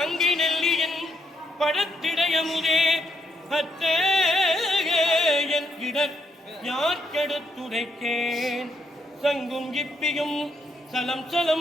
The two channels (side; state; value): both; normal; correlation 0.77